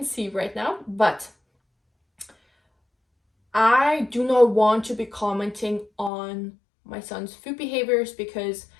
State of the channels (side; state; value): right; drops out; at 6.1 s